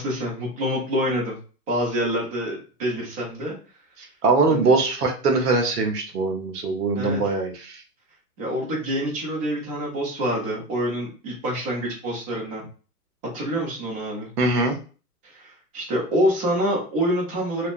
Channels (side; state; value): both; normal; correlation 0.28